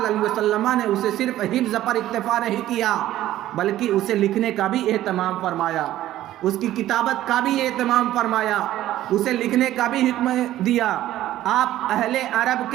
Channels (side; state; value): left; quieter; 13.9 dB